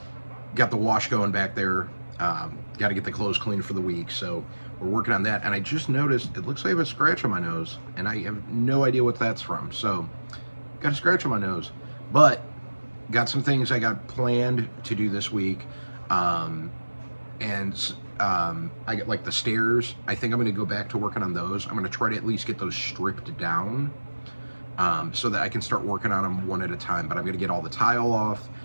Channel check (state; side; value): inverted; both; correlation -1.00